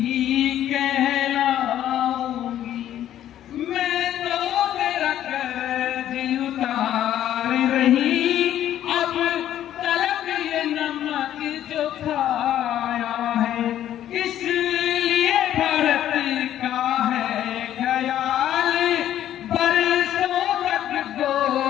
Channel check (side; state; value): right; quieter; 11.6 dB